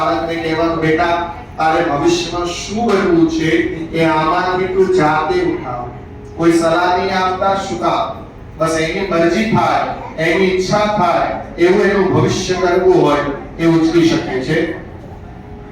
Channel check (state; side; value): identical; both; correlation 1.00